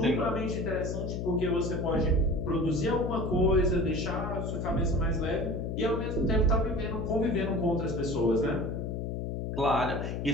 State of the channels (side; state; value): left; noise; hum, 3 dB below the sound